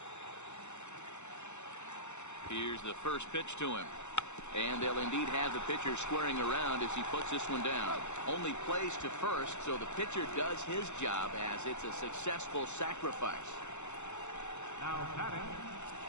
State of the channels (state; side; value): late; right; 0.83 ms